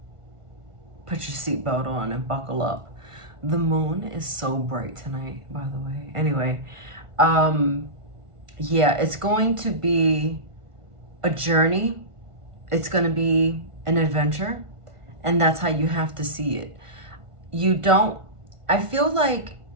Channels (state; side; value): late; left; 1.5 ms